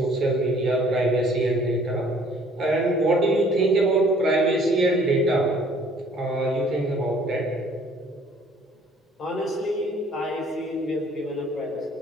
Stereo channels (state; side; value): normal; both; correlation 0.57